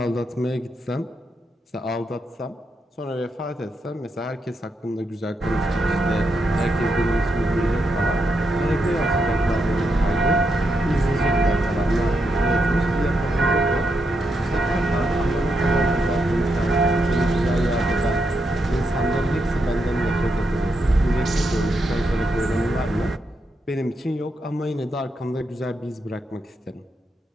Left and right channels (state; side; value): normal; both; correlation 0.83